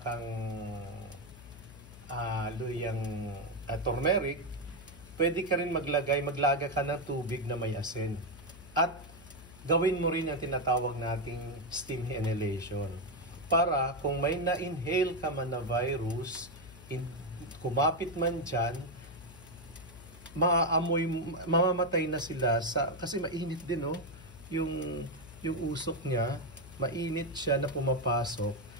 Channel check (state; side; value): noise; left; hum, 18 dB below the sound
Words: luyang turmeric, pwede ka rin maglaga ka ng tubig na may asin. At gawin mo rin yung tinatawag nating steam inhalation. Para kung may na-inhale ka man na virus, kumapit man dyan, mamamatay na sila kasi mainit din yung usok niya, mainit siya na pumapasok.